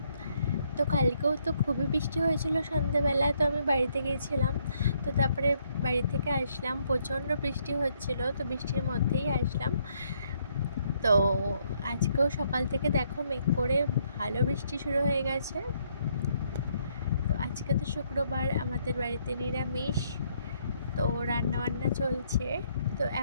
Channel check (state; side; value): inverted; both; correlation -0.71